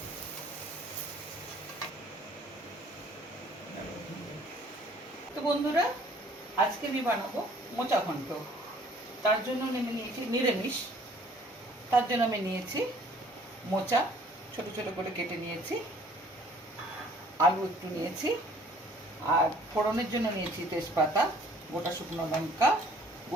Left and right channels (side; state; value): both; normal; correlation 0.56